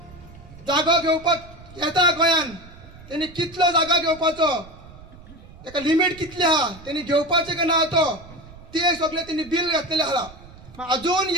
जागो घेवपाक येता गोंयान त्यांनी कितलो जागा घेवपाचो ताका लिमीट कितली आहा त्यांनी घेवपाचे काय ना तो ते सगळे त्यांनी बिल घातलेले आहा अजून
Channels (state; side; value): noise; right; rumble, 20 dB below the sound